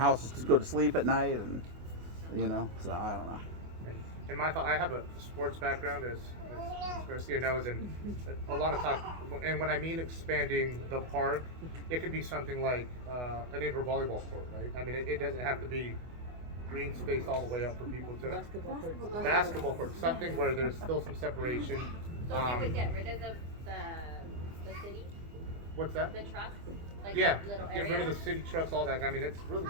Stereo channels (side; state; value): left; late; 24 ms